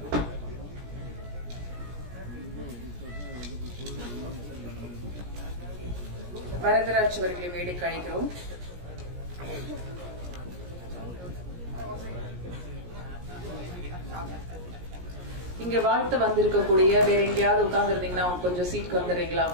வரதராஜ் அவர்களை மேடைக்கு அழைக்கிறோம். இங்க வாழ்த்து வந்திருக்கக்கூடிய வேற எங்கேயாவது உட்கார்ந்து இருந்தீங்கன்னா கொஞ்சம் சீட்டுக்கு வந்துடுறீங்களா?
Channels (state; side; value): late; left; 17 ms